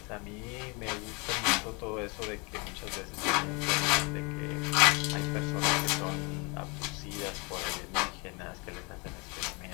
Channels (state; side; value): quieter; right; 30.1 dB